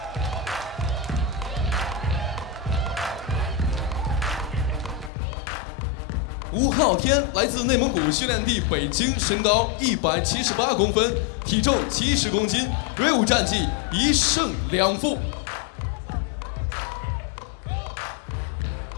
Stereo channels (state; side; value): drops out; right; at 5.1 s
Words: 吴昊天来自内蒙古训练地北京，身高178公分，体重70公斤，锐舞战绩1胜2负。